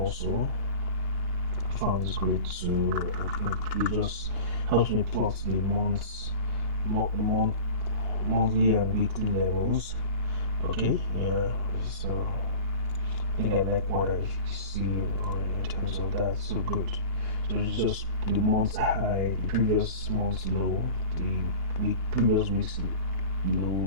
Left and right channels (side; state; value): right; late; 2.9 ms